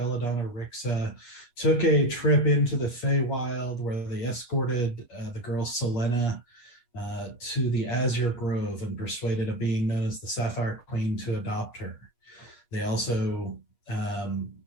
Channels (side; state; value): right; late; 8.4 ms